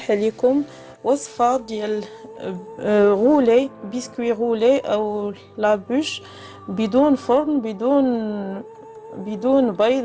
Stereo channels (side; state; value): both; identical; correlation 1.00